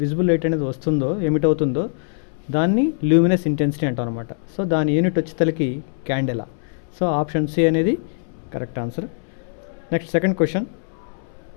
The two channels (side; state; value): right; silent; 64 dB below the other